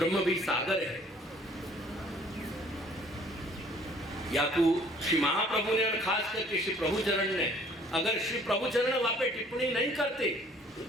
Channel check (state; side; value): normal; both; correlation 0.57